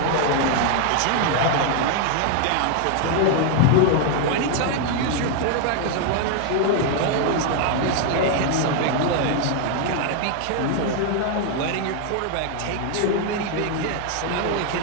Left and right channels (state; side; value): different; both; correlation 0.00